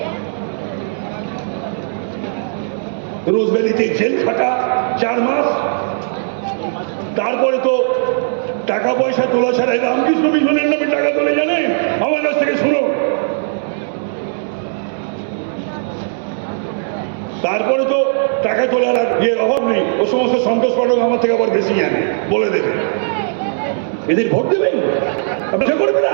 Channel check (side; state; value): left; silent; digital silence